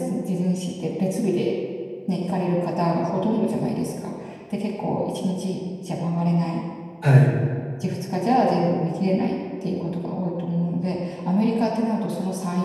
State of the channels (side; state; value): both; identical; correlation 1.00